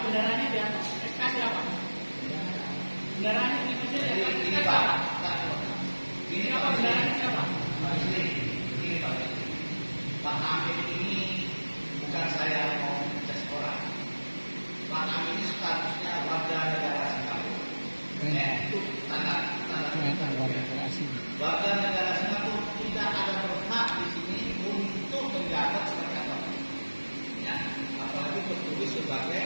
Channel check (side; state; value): both; inverted; correlation -1.00